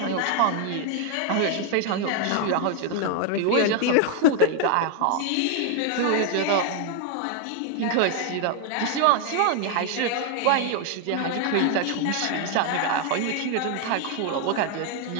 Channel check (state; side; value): different; both; correlation 0.00